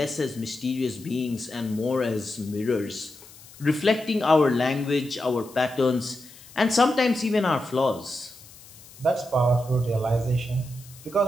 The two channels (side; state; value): left; noise; hiss, 21 dB below the sound